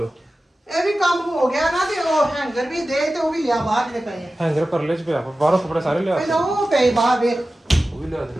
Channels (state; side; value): normal; both; correlation 0.95